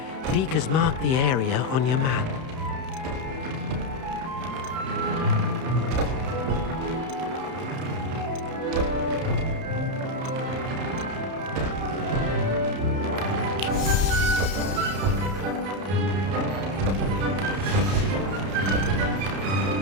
Deke has marked the area on your map.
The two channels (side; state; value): left; late; 31 ms